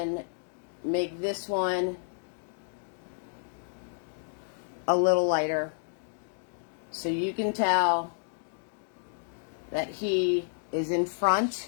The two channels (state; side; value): silent; right; digital silence